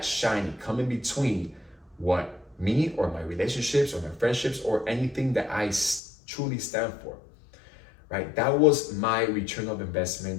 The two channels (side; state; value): right; drops out; at 6.0 s